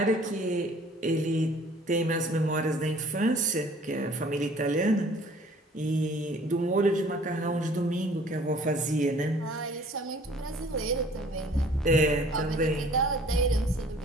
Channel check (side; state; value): both; normal; correlation 0.53